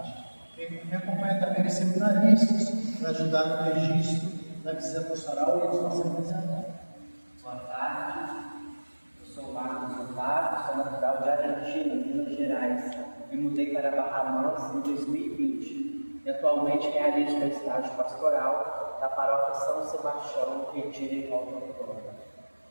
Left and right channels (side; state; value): both; inverted; correlation -1.00